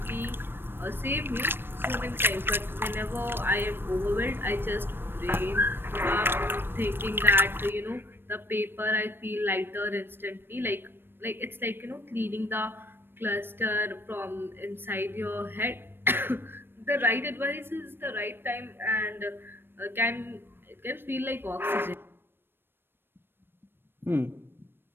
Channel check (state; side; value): late; left; 0.10 ms